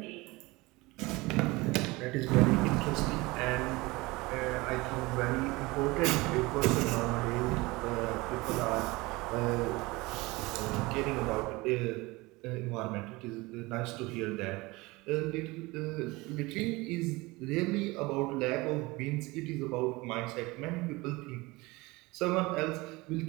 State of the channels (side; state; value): left; quieter; 22.5 dB